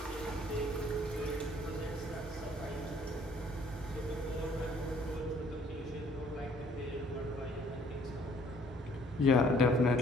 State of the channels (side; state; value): both; normal; correlation 0.60